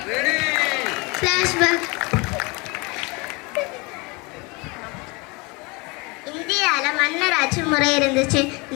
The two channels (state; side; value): quieter; right; 27.5 dB